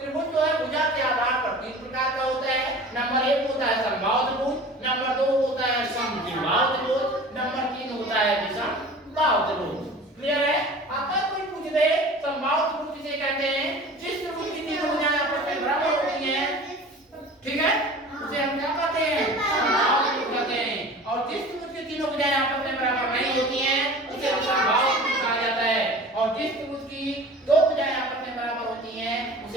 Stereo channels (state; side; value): normal; both; correlation 0.40